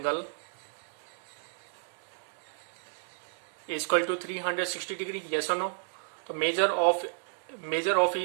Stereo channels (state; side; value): silent; left; digital silence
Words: is equal to 360 degree. Yes or no? तो measure of